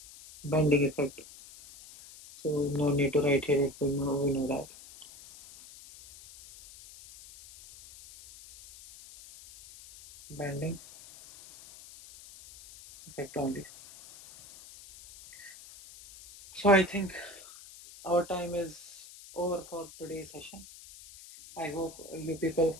bending effect. So no need to write here, we know that. Bending effect only. So I think our time is over for today's session. I hope you people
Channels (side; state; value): left; noise; hiss, 18 dB below the sound